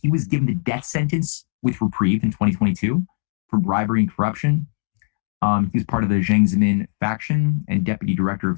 He was given the death sentence with reprieve in 2022 for bribery and corruption. He was part of the Jiang Zemin faction and deputy director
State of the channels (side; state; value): right; silent; digital silence